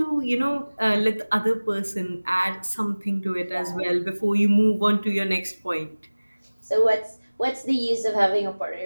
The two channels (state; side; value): inverted; both; correlation -1.00